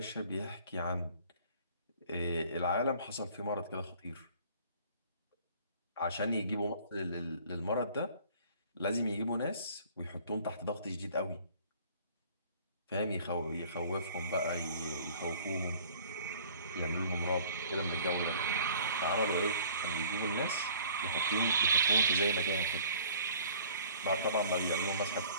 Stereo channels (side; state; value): both; inverted; correlation -0.52